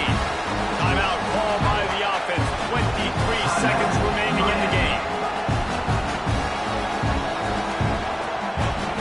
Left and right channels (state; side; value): identical; both; correlation 1.00